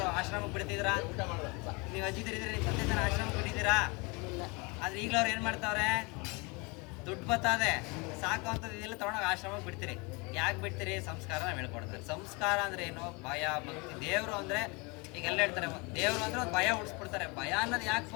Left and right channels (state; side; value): quieter; right; 28.4 dB